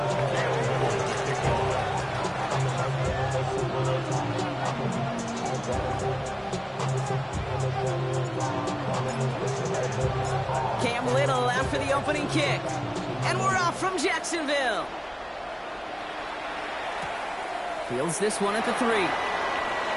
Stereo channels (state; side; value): identical; both; correlation 1.00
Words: Cam Little after the opening kick. And we're off from Jacksonville. Fields this one at the 3.